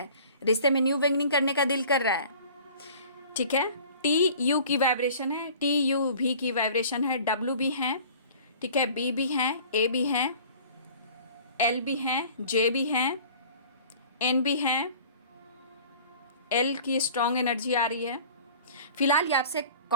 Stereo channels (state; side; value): inverted; both; correlation -0.46